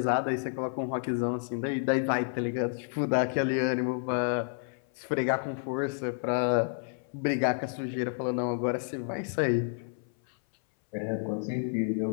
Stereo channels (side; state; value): right; silent; 58 dB below the other